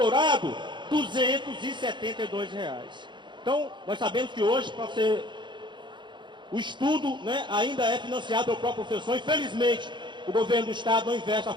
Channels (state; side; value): late; left; 0.23 ms